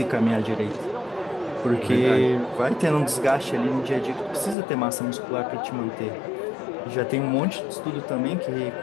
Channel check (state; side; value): drops out; right; at 4.5 s